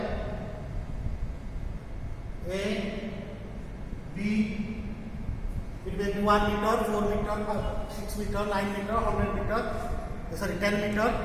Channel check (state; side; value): identical; both; correlation 1.00